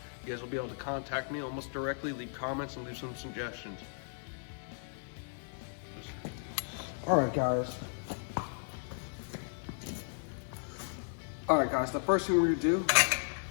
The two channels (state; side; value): silent; right; 54 dB below the other